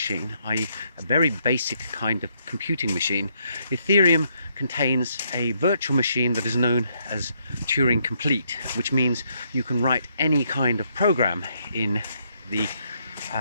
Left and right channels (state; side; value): inverted; both; correlation -0.74